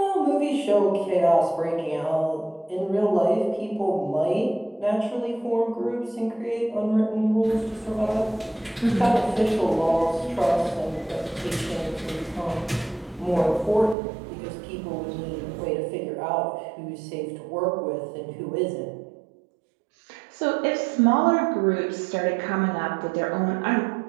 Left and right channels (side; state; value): left; drops out; at 14.0 s